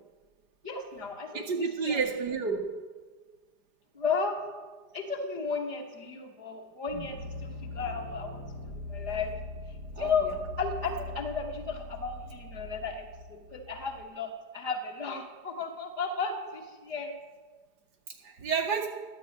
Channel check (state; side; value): late; left; 4.9 ms